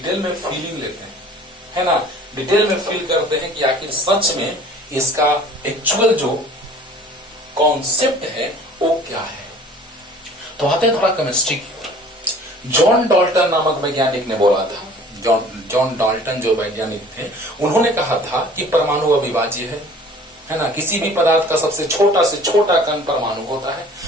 में फीलिंग लेते हैं, है ना, डिटेल में फील करते हैं कि आखिर सच में इसका एक्चुअल जो कॉन्सेप्ट है वो क्या है। तो आते हैं थोड़ा केमिस्ट्री की ओर। जॉन डाल्टन नामक वैज्ञानिक ने बोला था, जॉन डाल्टन जो वैज्ञानिक थे, उन्होंने कहा था कि परमाणु अविभाज्य है ना, किसी भी पदार्थ का सबसे छोटा से छोटा कण परमाणु होता है,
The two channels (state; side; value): normal; both; correlation 0.49